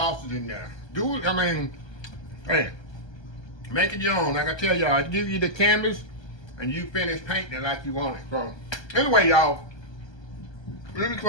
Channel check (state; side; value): late; right; 1.3 ms